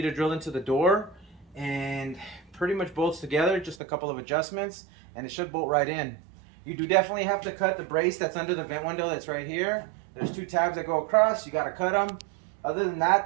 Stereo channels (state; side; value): drops out; left; at 3.8 s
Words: to drill into the door, and pretty much bolts together, just a couple of adjustments, and it should bolt right in. You do definitely have to cut the brace that's under the vent window that's right here. There's 2 tabs that go across, you got to cut them. Other than that,